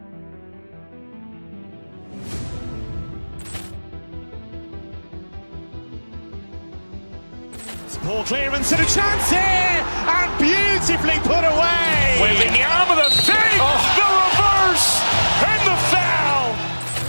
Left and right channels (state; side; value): inverted; both; correlation -1.00